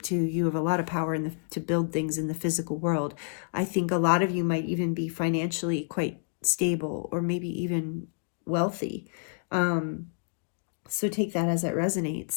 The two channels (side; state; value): right; silent; digital silence